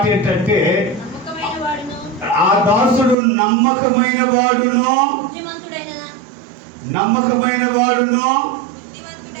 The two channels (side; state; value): left; drops out; at 3.2 s